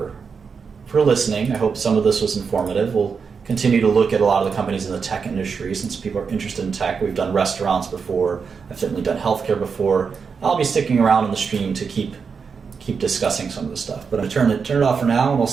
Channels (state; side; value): quieter; left; 5.7 dB